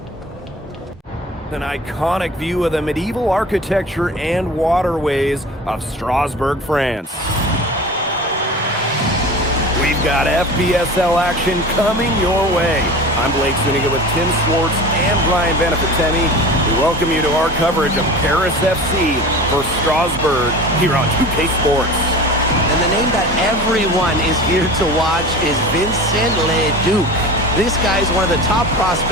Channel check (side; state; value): both; normal; correlation 0.36